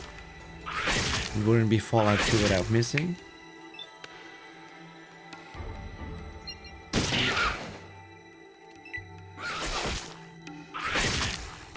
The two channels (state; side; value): identical; both; correlation 1.00